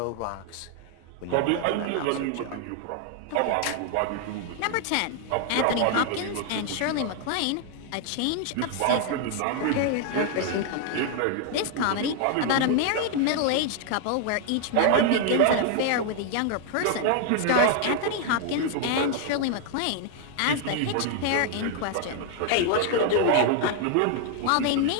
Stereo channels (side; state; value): both; different; correlation 0.00